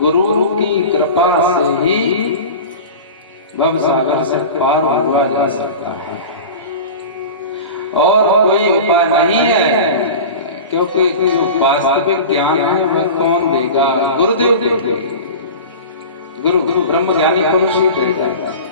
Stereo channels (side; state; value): both; inverted; correlation -0.33